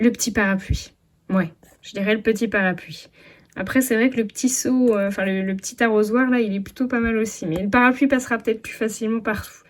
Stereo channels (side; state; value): both; identical; correlation 1.00